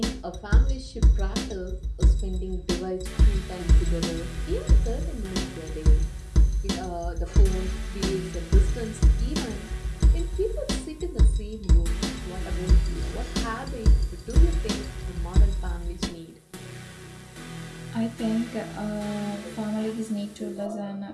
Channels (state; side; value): identical; both; correlation 1.00